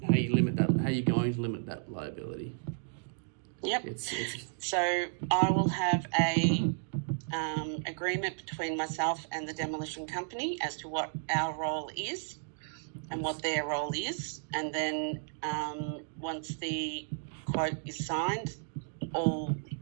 how you limit that. How you're going to limit that liability. Yep. So I will have a agreement between myself and the demolition company as to what our role is and what their role is, and then once the quote is signed, all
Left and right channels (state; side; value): silent; left; digital silence